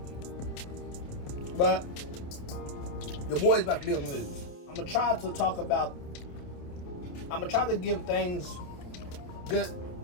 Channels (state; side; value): late; right; 28 ms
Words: But your boy's about to be on the news. I'm gonna try to give things good,